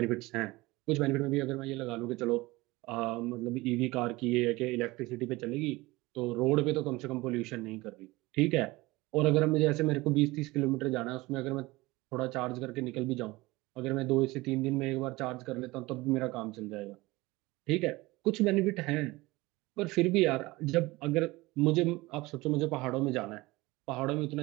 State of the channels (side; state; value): left; quieter; 21.0 dB